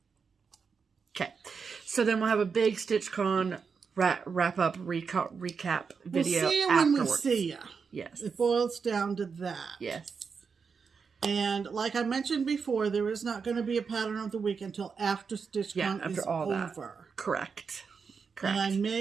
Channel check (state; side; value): quieter; left; 5.6 dB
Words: Okay. So then we'll have a big StitchCon wrap up recap video. We'll see you afterwards. when we see you. Yes. It boils down to that. Yes. And like I mentioned before, there is not going to be a pattern of the week until after StitchCon is all over. That. Correct. And I